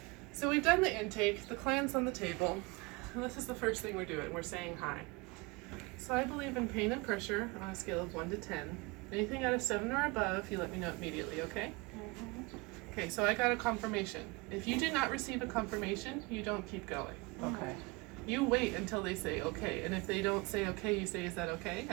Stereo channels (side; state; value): left; quieter; 25.5 dB